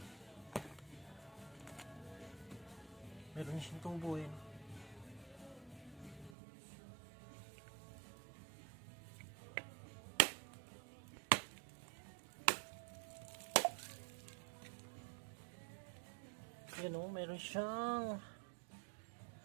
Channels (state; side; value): drops out; left; at 6.4 s